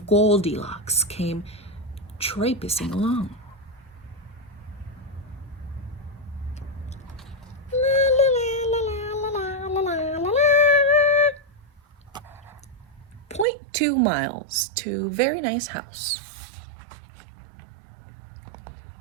Goldilocks came traipsing along. La, la, la, la, 2 miles to a very nice house.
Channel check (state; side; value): drops out; left; at 13.5 s